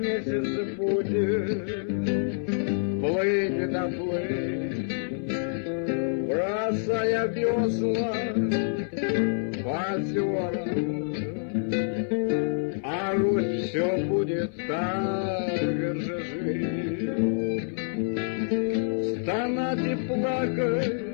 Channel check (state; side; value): silent; right; 59 dB below the other